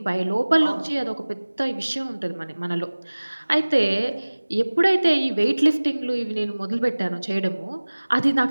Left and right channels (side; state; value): both; inverted; correlation -1.00